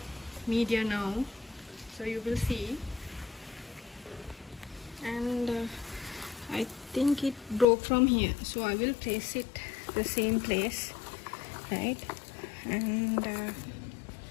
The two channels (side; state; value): right; drops out; at 7.7 s